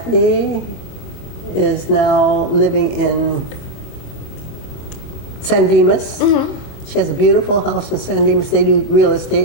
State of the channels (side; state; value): right; late; 24 ms